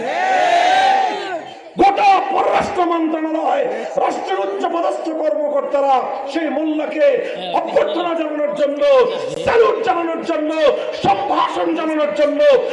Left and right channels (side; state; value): both; identical; correlation 1.00